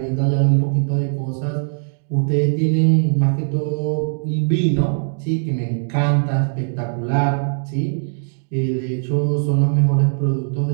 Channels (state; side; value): silent; left; digital silence